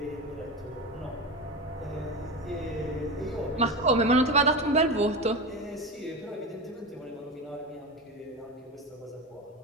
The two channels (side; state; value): both; normal; correlation 0.22